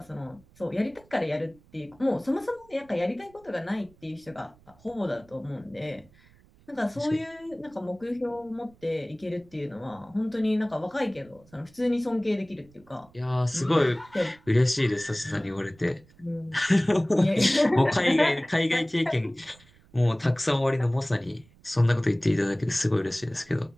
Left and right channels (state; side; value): noise; right; rumble, 28 dB below the sound